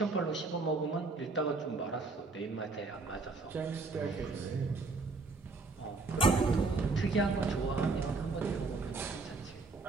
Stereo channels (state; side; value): quieter; left; 3.8 dB